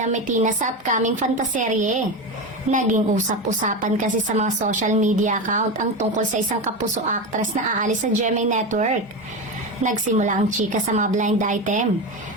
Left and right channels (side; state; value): both; normal; correlation 0.19